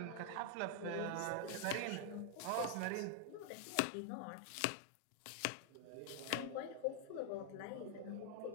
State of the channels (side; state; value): both; different; correlation 0.00